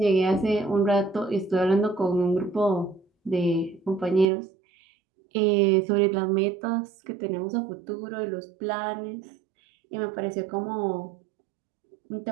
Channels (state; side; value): drops out; left; at 4.2 s